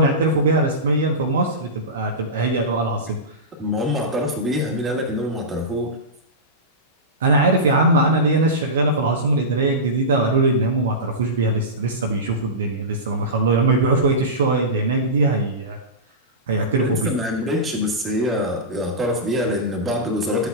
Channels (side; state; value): both; normal; correlation -0.17